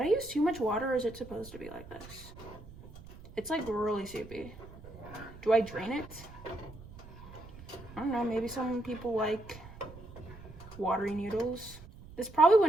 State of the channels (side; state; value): right; noise; rumble, 17 dB below the sound